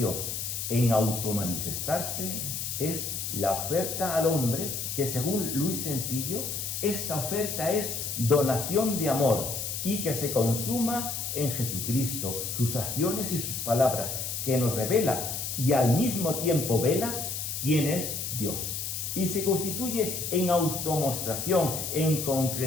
en automanifestarse es la oferta al hombre, que según Luis Sencillo, esta oferta es donación de amor y que se consuma en Jesucristo, sus acciones y sus palabras, que nos revela y al mismo tiempo vela quién es Dios. Y se constituye en automostración, en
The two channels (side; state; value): left; noise; hiss, 4 dB below the sound